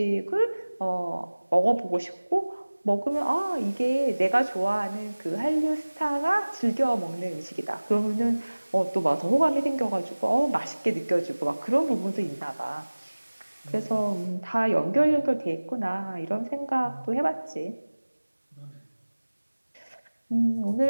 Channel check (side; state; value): both; inverted; correlation -1.00